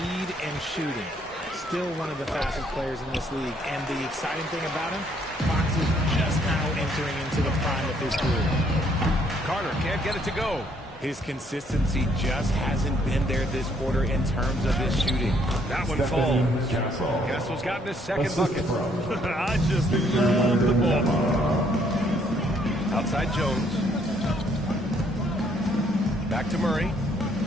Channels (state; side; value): normal; both; correlation 0.67